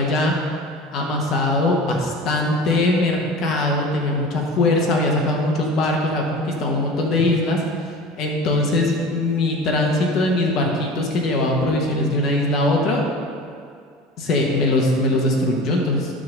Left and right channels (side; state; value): both; normal; correlation 0.36